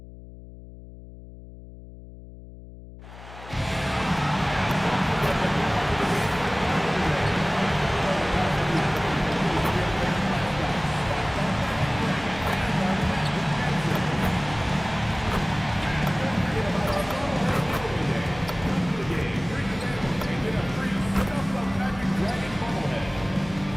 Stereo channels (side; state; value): left; noise; hum, 16 dB below the sound